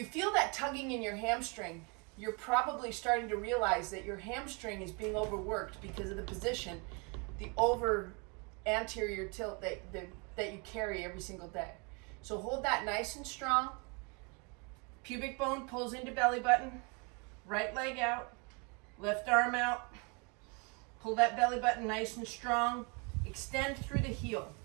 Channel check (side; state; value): left; quieter; 32.4 dB